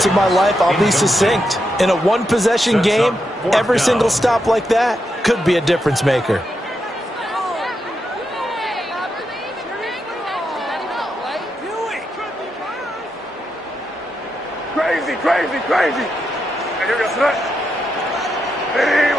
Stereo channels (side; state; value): both; normal; correlation 0.84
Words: in my life, I'll be succinct. In a one-possession game, every single stop like that could be a difference maker. Crazy. Here we go, Sarge. Ready,